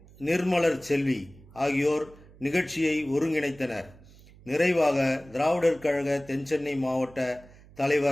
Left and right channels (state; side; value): noise; right; hum, 23 dB below the sound